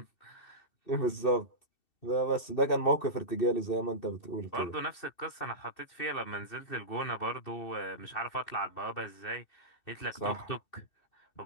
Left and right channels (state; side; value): late; right; 2.7 ms